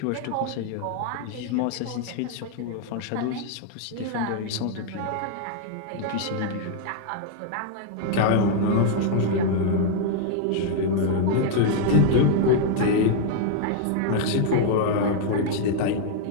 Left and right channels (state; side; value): different; both; correlation 0.00